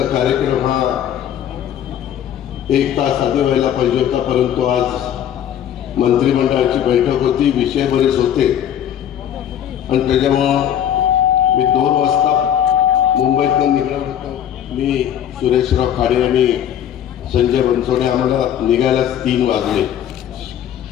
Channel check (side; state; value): right; quieter; 10.0 dB